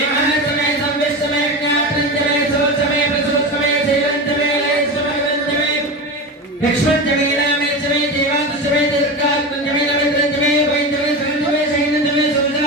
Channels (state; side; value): normal; both; correlation 0.23